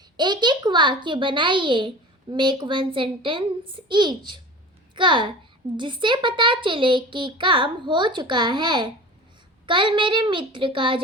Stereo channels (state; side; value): normal; both; correlation 0.37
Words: एक एक वाक्य बनाइए। Make 1 sentence each. जिससे पता चले कि काम हो चुका है। कल मेरे मित्र का